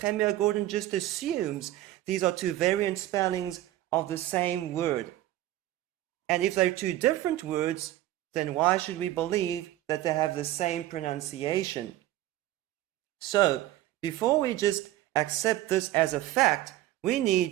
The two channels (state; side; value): quieter; left; 14.9 dB